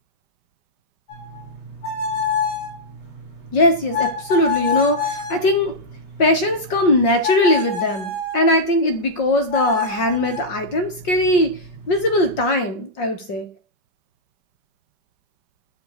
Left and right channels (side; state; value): right; late; 5.6 ms